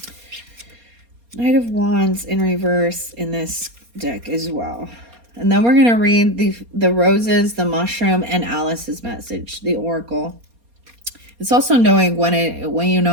of Wands in reverse in this deck as well. And then we're going to read the roses, the mushroom, and Alice's message, the oracle. It's also knowing when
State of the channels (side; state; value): left; late; 4.2 ms